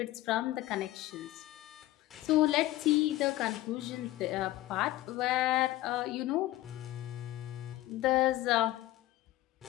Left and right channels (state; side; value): quieter; right; 16.3 dB